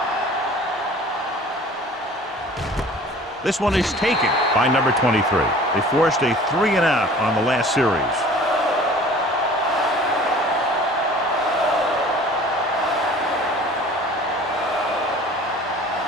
This one is taken by number 23. They forced a 3-and-out on the last series.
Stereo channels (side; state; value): both; normal; correlation 0.46